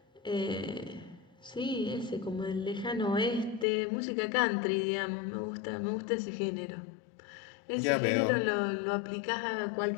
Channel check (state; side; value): drops out; right; at 3.7 s